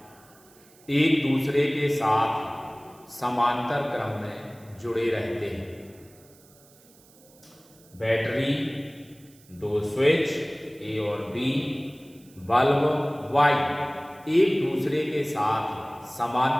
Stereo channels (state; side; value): noise; right; hiss, 27 dB below the sound